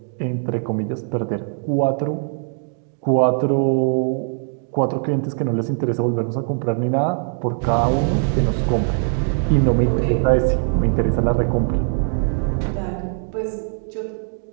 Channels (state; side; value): silent; left; digital silence